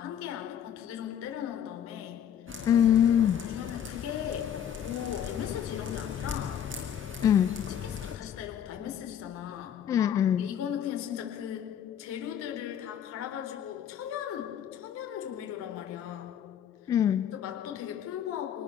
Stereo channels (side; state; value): right; quieter; 9.3 dB